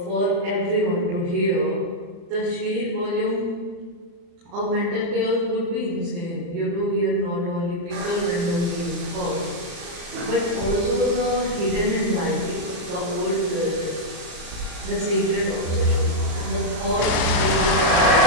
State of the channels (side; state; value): left; late; 35 ms